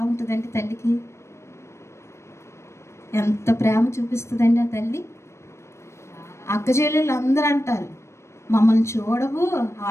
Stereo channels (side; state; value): right; late; 0.13 ms